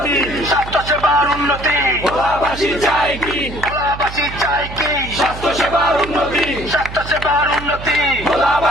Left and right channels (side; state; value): right; noise; hum, 11 dB below the sound